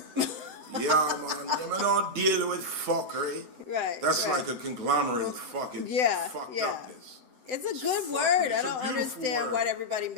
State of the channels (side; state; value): left; late; 7.9 ms